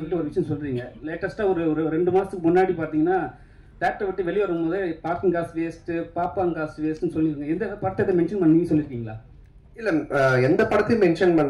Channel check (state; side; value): identical; both; correlation 1.00